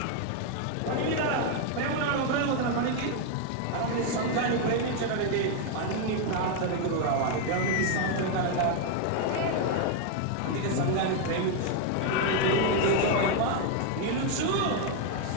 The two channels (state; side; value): different; both; correlation 0.01